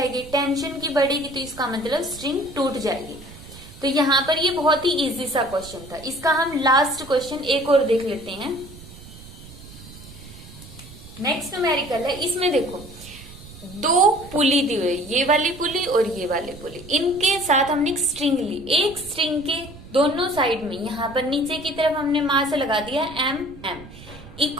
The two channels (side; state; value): right; noise; rumble, 17 dB below the sound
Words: टेंशन की बढ़ेगी तो इसका मतलब स्ट्रिंग टूट जाएगी। तो यहाँ पर ये बहुत ही इजी सा क्वेश्चन था। इसका हम लास्ट क्वेश्चन एक और देख लेते हैं। नेक्स्ट न्यूमेरिकल है, इसमें देखो दो पुली दी हुई, ये वाली पुली और ये वाली पुली, इनके साथ हमने एक स्ट्रिंग ली। एक स्ट्रिंग के दोनों साइड में यहाँ पर नीचे की तरफ हमने मास लगा दिया m